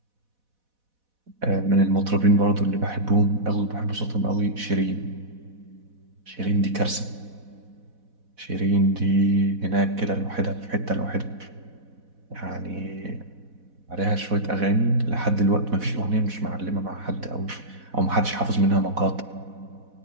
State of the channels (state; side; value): late; left; 4.1 ms